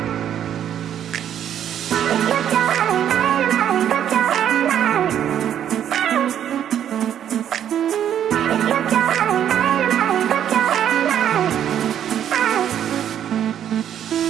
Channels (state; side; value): quieter; left; 10.0 dB